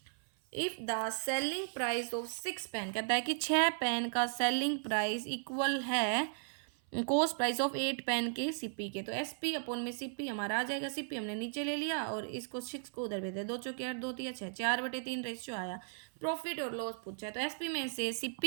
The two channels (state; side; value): silent; left; 54 dB below the other